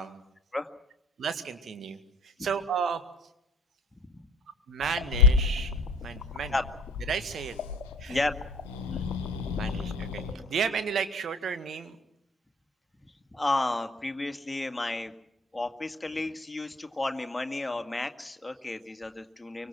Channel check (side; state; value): both; normal; correlation 0.50